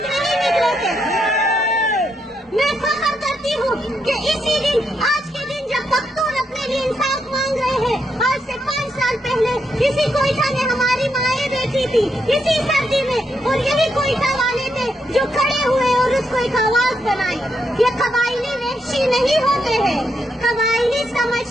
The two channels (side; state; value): both; normal; correlation 0.80